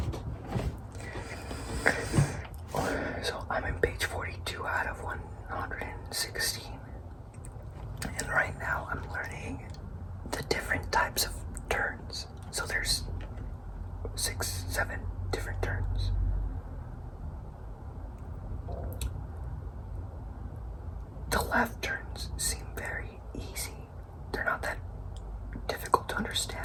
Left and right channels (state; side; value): identical; both; correlation 1.00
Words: I'm in page 42 out of 116. And right now I'm learning the different types of turns. So there's 6, 7 different turns. The left turns seem very easy. They're not that difficult to